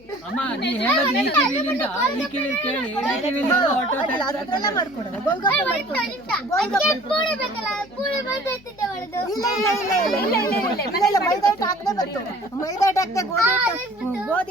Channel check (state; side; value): noise; left; hum, 28 dB below the sound